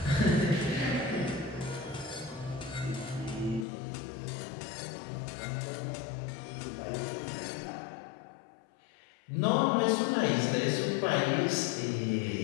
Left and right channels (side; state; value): right; drops out; at 3.7 s